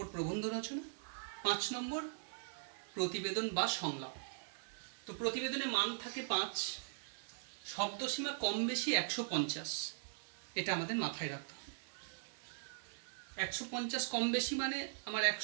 প্রবন্ধ রচনা, 5 নম্বর প্রতিবেদন বা সংলাপ। তো প্রতিবেদনে মান থাকে 5, শব্দসীমা কম বেশি 150। এটা আমাদের মাথায় রাখতে হবে। 150 কম বেশি মানে আমার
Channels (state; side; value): silent; left; 51 dB below the other